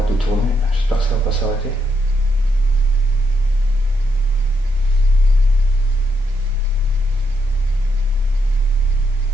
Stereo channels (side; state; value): both; normal; correlation 0.79